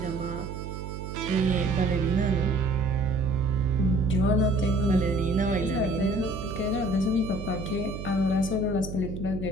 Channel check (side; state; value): right; noise; hum, 8 dB below the sound